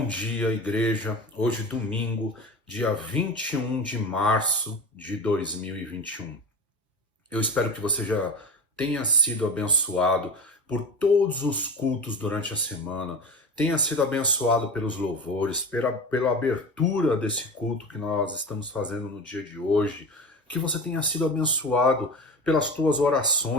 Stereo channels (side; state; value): both; normal; correlation 0.30